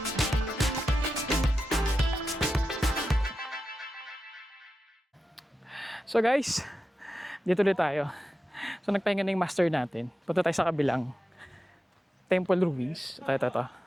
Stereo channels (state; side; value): normal; both; correlation 0.91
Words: So guys, dito ulit tayo. So nagpahinga na yung master natin. Punta tayo sa kabilang temple ruins. Ito.